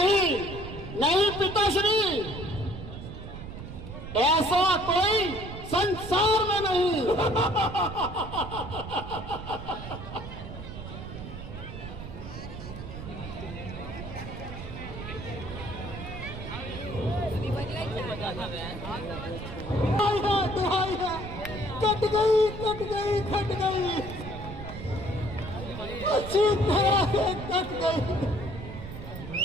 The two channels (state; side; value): noise; right; rumble, 10 dB below the sound